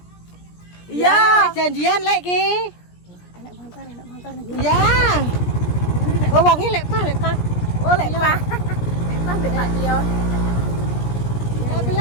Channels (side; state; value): right; late; 17 ms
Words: Iya. Janjian lek ki. Enak montor nih. Ya. Oh, wonge lek pa. Oh, lek Pak. Lek Pak mbek Pak Tio. Lek